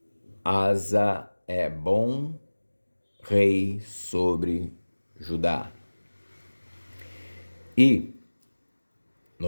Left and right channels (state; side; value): inverted; both; correlation -1.00